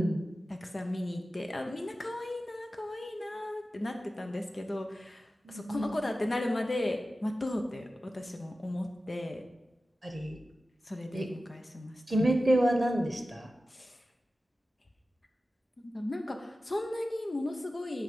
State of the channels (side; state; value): both; normal; correlation 0.94